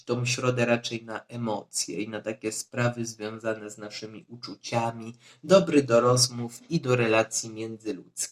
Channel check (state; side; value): identical; both; correlation 1.00